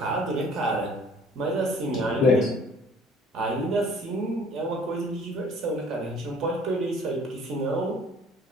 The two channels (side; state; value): both; normal; correlation 0.52